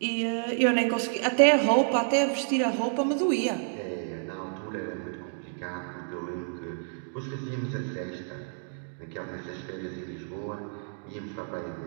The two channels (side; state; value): left; silent; digital silence